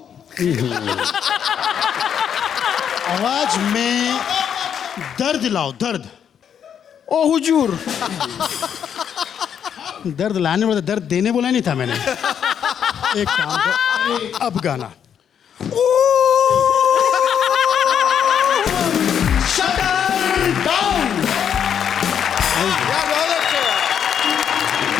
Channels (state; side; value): quieter; right; 8.4 dB